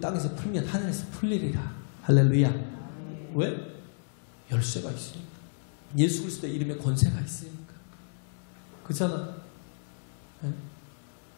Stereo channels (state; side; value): silent; right; 57 dB below the other